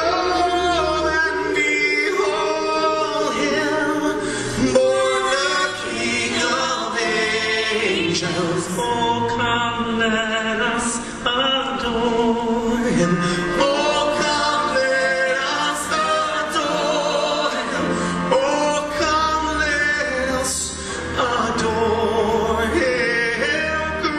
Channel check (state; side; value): identical; both; correlation 1.00